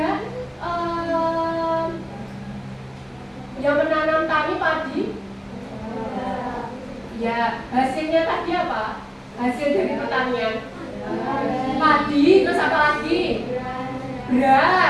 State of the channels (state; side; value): identical; both; correlation 1.00